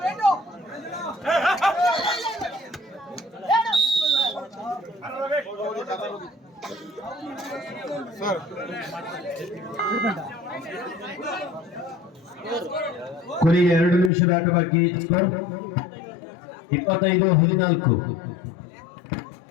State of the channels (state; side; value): drops out; right; at 14.1 s